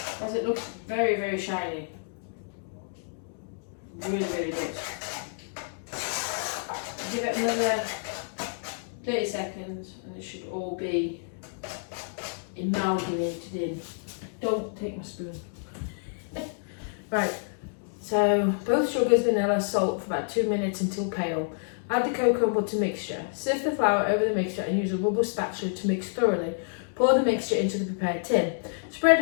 As it looks very, very shiny. Really, really good. Give it another 30 seconds and it should all be amalgamated in. Don't take my spoon. Right, so both sugars, vanilla, salt for about 2 minutes until pale. Add the cocoa and butter mixture. Sift the flour over the mixture and use a rubber spatula to mix thoroughly. Pour the mixture into the prepared tin. Spread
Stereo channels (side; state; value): right; silent; digital silence